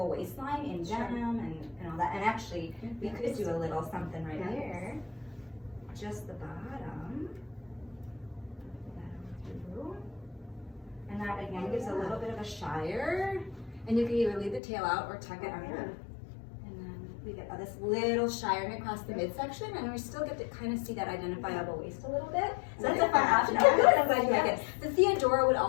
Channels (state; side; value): drops out; right; at 14.6 s